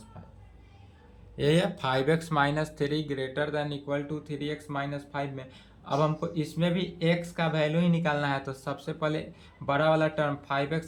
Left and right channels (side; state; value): both; identical; correlation 1.00